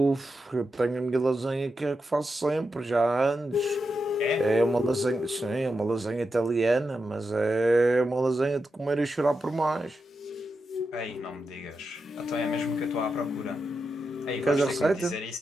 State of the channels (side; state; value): both; normal; correlation 0.88